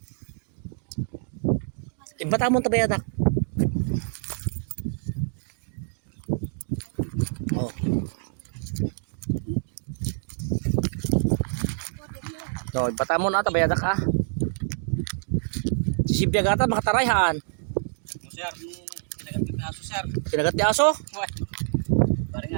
Batamon tabayad ak. Oh. No, batamon ata bayadak ah. Sisibiyag ata makatarayhan. Sir, no, kinagat ti aso, sir. Kinagat ti aso? What? Parang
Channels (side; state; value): left; silent; digital silence